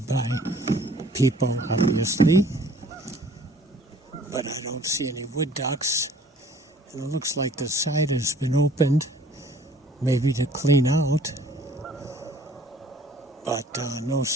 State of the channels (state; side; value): normal; both; correlation 0.54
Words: by people obviously, but I don't see any wood ducks, and it looks like the side has been opened, maybe to clean out, but no